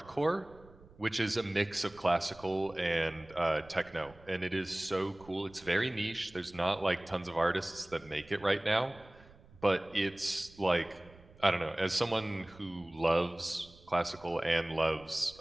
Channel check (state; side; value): noise; right; rumble, 24 dB below the sound